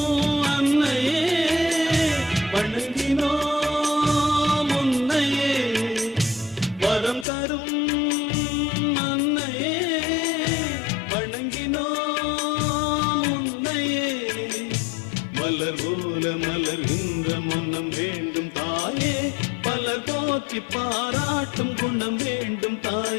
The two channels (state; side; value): drops out; right; at 7.2 s